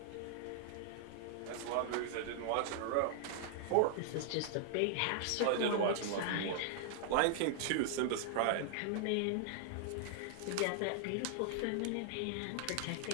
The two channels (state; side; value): different; both; correlation -0.01